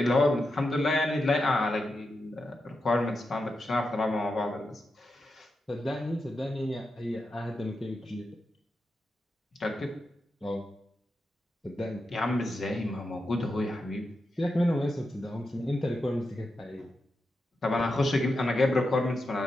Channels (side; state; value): both; normal; correlation 0.88